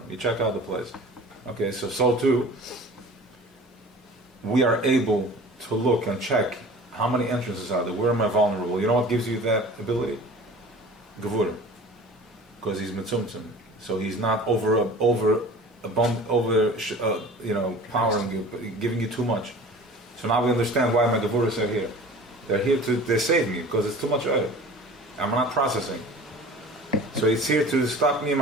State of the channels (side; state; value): both; normal; correlation 0.42